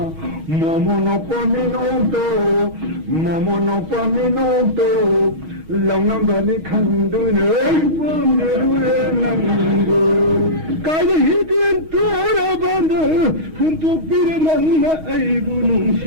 모모노빠 미노도 모모노빠 미노도 렁넘버니 칸두는 밤들의 낭보 까지 히든 돌아반다 흠뚝비를 만나 아이고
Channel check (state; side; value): late; left; 6.3 ms